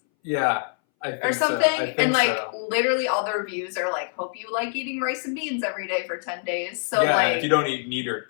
Yeah, I think or something, so. I think and, like, so. literally all the reviews are like, hope you like eating rice and beans every day for 10 days. So, yeah, like, if you don't eat meat or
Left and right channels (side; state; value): right; silent; 61 dB below the other